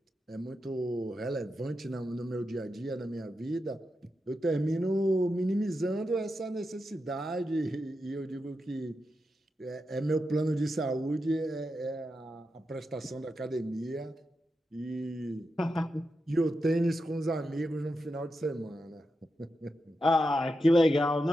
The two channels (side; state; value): both; normal; correlation 0.88